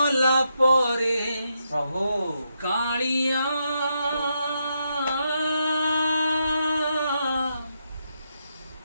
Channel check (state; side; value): inverted; both; correlation -0.82